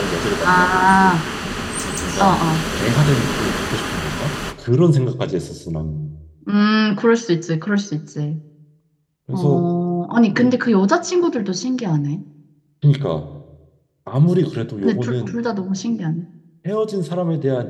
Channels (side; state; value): both; identical; correlation 1.00